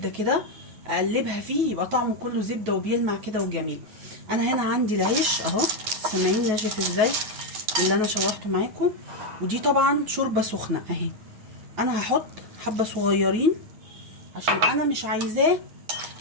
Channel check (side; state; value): left; late; 9.3 ms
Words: كده اقلبها فيه، يبقى طعمه كله زبده وبيلمع كده وجميل. انا هنا عندي العيش اهو، سامعين ناشف ازاي اللي انا شوحته معاكم. ودي طبعا شوربه سخنه اهي. انا هحط حبه صغيرين عشان انا مش عايزاه